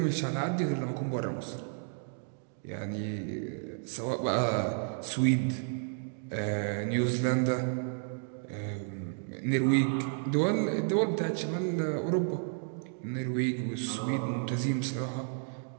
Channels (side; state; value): left; silent; 56 dB below the other